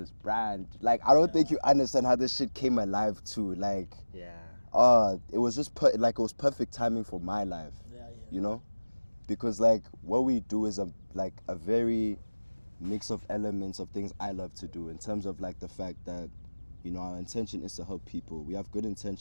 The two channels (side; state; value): both; inverted; correlation -1.00